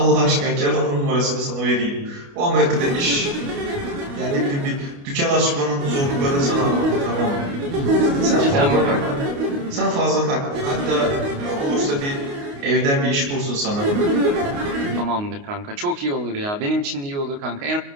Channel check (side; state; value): left; late; 29 ms